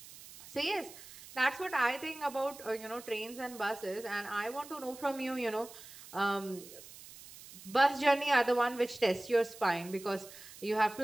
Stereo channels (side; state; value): right; noise; hiss, 17 dB below the sound